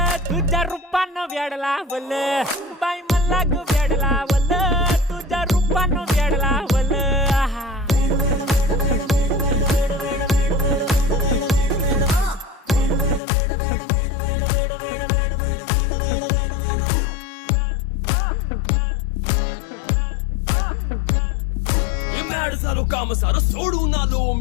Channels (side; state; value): right; drops out; at 13.2 s